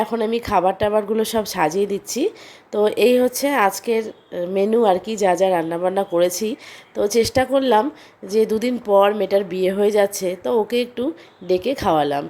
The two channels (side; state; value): both; identical; correlation 1.00